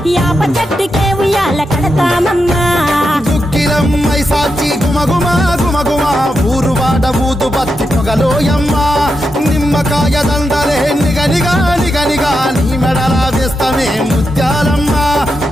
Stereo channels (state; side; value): normal; both; correlation 0.86